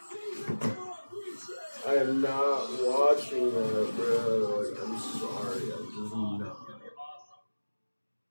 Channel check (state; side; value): inverted; both; correlation -1.00